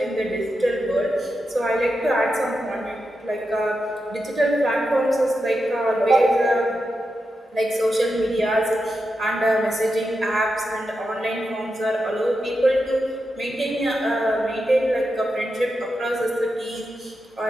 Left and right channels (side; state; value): both; normal; correlation 0.88